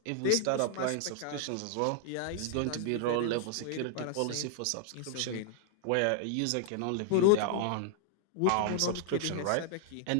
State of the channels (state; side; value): different; both; correlation -0.01